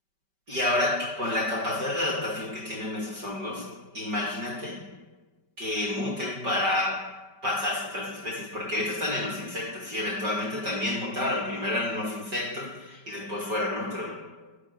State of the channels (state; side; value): late; left; 5.2 ms